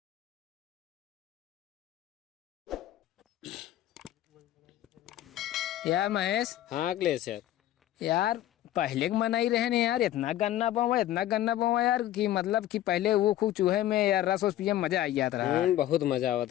यार महेश। हाँ अखिलेश यार पहले के मनाई रहे ने यार इतना गन्ना बोवा यार कि मतलब कि पहले वो खूब चूहे में यार रस पिए में मजा आई जाता रहा। बहुत मजा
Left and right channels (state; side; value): quieter; right; 13.2 dB